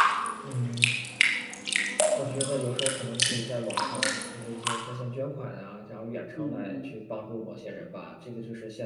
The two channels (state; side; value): identical; both; correlation 1.00